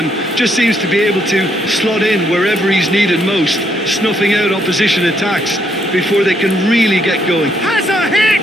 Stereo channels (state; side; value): normal; both; correlation 0.73